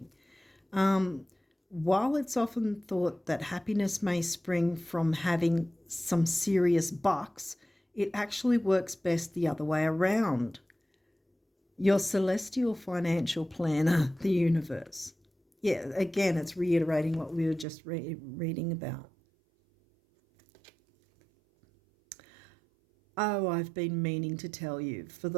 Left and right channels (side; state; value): left; drops out; at 17.7 s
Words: While it's often thought that happiness may spring from having some serious bucks, it actually works best the other way around. Your celestial financial planner, the universe. Yeah, again, it's reiterating what we were just reading about. Oh, I've been meaning to tell you for